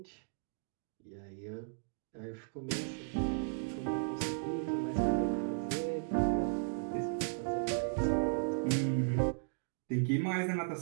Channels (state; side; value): silent; left; digital silence